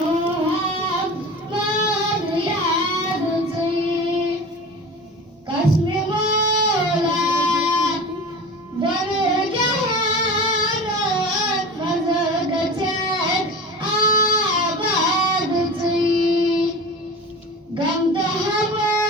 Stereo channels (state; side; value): normal; both; correlation 0.34